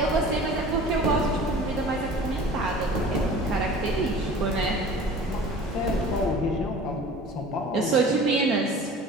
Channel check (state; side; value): normal; both; correlation 0.42